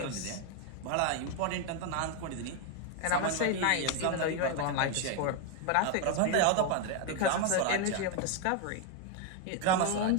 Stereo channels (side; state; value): both; different; correlation 0.01